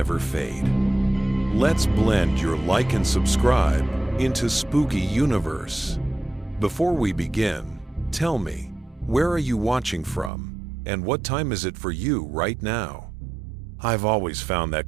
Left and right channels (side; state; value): left; drops out; at 10.3 s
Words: fade. Let's blend your like and subscribe into Spooky Universe. Before we begin, tell me, where are you watching from? And what time is it for you right now? I've always found that